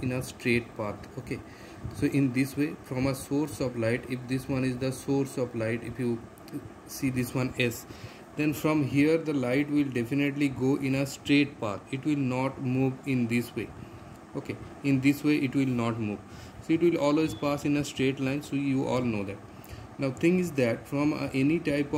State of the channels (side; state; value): both; identical; correlation 1.00